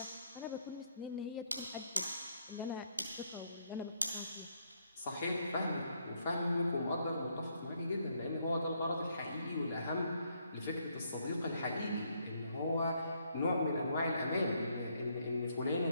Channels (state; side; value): inverted; both; correlation -0.72